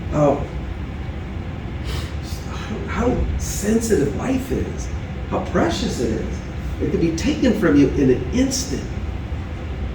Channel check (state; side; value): identical; both; correlation 1.00